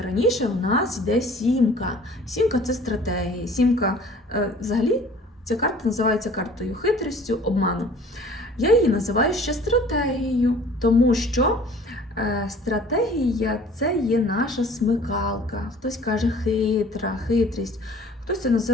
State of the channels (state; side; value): normal; both; correlation 0.50